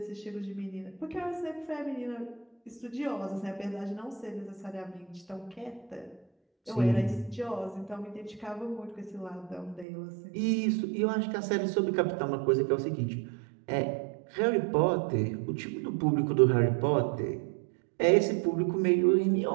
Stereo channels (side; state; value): left; drops out; at 9.9 s